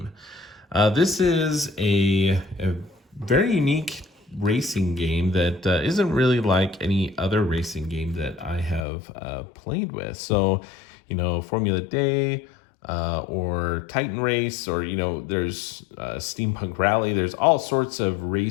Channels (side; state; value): right; drops out; at 8.8 s